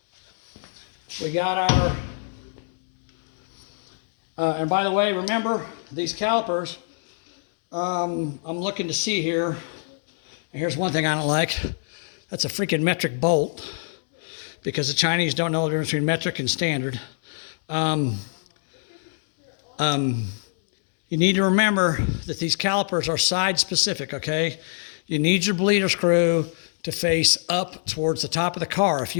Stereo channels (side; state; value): right; silent; 62 dB below the other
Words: We got our, and by the way, remember these calipers, I'm looking to see here, and here's one thing I don't like. That's a freaking metric bolt, because the Chinese don't know the difference between metric and standard. You need to remember that these calipers are side specific, okay? You need your bleeder screw to face up towards the top of the car.